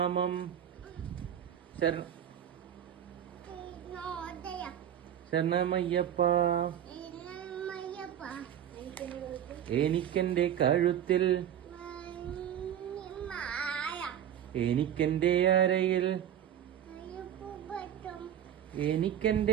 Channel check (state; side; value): quieter; left; 10.2 dB